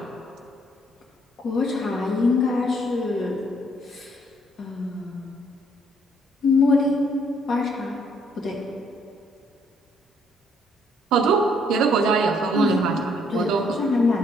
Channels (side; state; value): both; normal; correlation 0.67